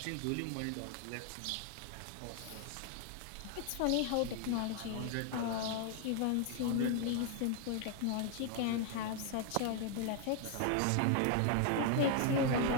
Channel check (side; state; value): both; different; correlation 0.00